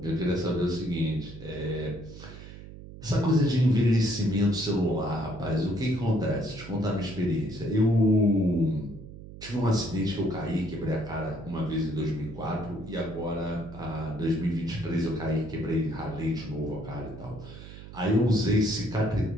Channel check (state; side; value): noise; right; hum, 14 dB below the sound